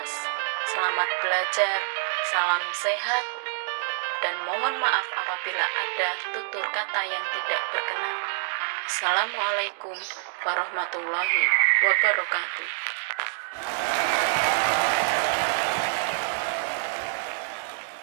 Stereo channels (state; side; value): silent; left; digital silence